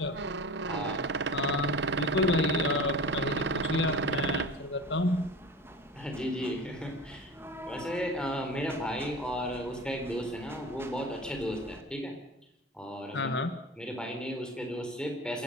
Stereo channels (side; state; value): both; normal; correlation 0.34